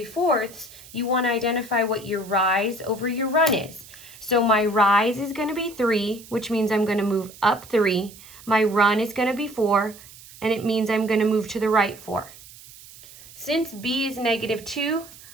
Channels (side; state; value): right; noise; hiss, 20 dB below the sound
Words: you want to identify what your rise over your run is. So my rise is going to be 3, which means I'm going to move up 3. My run is going to be 4, and it means I'm going to move to the right 4. Since b is -2,